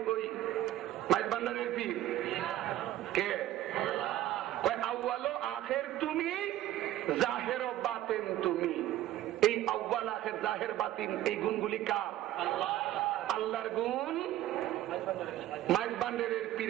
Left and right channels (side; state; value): left; quieter; 13.9 dB